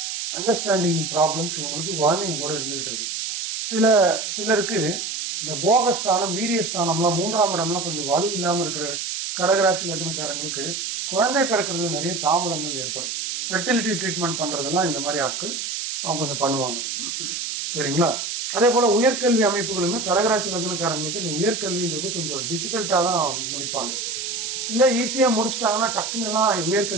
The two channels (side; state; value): right; noise; hiss, 4 dB below the sound